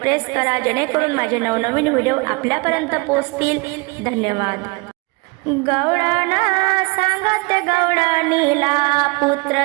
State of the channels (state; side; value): quieter; left; 28.2 dB